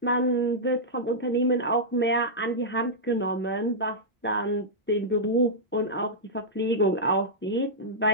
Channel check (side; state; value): both; normal; correlation -0.10